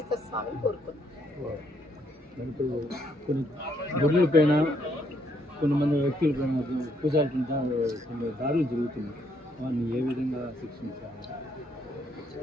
స్వామిని కోరుకున్నాం. కొంతమంది వ్యక్తుల పైన పూజాల కింద కొన్ని దాడులు జరుగుతున్నాయి, వారిని ఏ విధంగా శిక్షించాలి?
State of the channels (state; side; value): normal; both; correlation 0.72